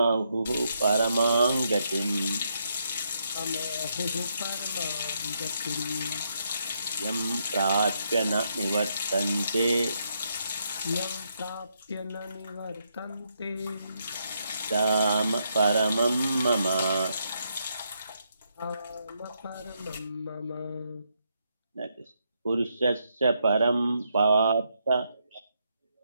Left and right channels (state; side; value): inverted; both; correlation -0.78